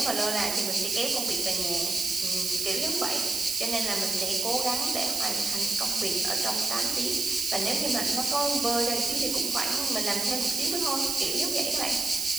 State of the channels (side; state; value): right; noise; hiss, 2 dB below the sound